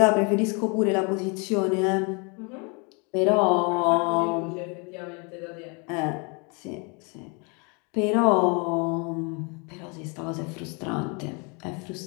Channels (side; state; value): right; quieter; 32.8 dB